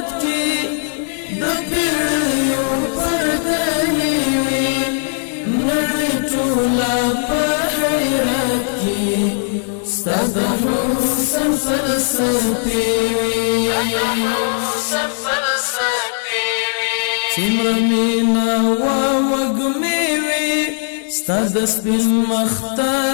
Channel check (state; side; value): silent; right; digital silence